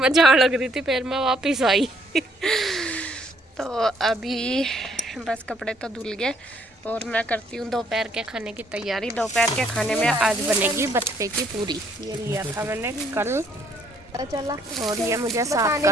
लग रही थी फिर मैं वापिस आई तो अभी बस कपड़े तो धुल गए और मैं करती हूँ दोपहर के खाने की तैयारी। दोपहर के खाने में आज बनेगी बथुए की पूरी। ये लिया था मैंने कल चला और ये मुझे साफ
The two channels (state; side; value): normal; both; correlation 0.67